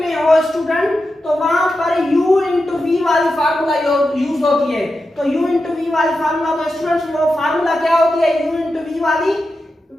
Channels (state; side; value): normal; both; correlation 0.90